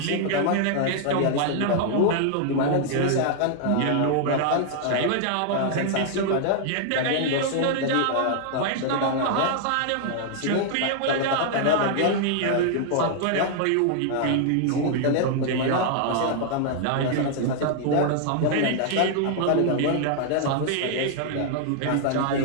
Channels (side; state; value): both; different; correlation 0.00